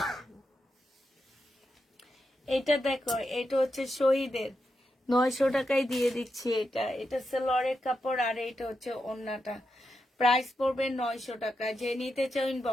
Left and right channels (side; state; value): both; normal; correlation 0.86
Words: এটা দেখো, এটা হচ্ছে শহীদের, 900 টাকায় দিয়ে দিচ্ছি। এটা এটা সেলোয়ারের কাপড়, আর এটা হচ্ছে ওড়নাটা। প্রাইস পড়বে 900 টাকা। যে নিতে চাও